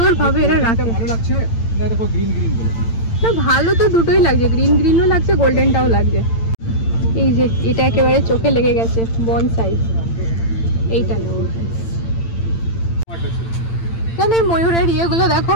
ভাবে এরা রাখে। ভালো লাগছে না? দেখো গ্রিন গ্রিন গুলো না, ভালো তো দুটোই লাগছে, গ্রিন গ্রিনও লাগছে, গোল্ডেনটাও লাগছে। এই যে এটা একেবারে চোখে লেগে গেছে বনসাই, এইটা নেব। জানো এই ময়ূরের ইয়েগুলো দেখো,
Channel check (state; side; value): late; right; 8.9 ms